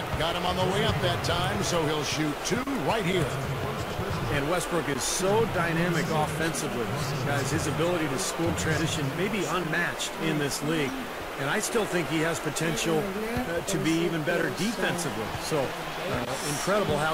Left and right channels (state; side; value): identical; both; correlation 1.00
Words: Got him on the way up that time, so he'll shoot 2 right here. And Westbrook is so dynamic offensively. Guys, his ability to score transition may be unmatched in this league. And I still think he has potential to be even better defensively. So, incredible